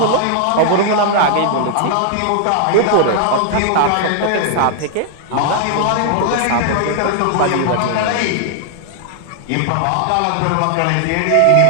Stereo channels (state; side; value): different; both; correlation 0.00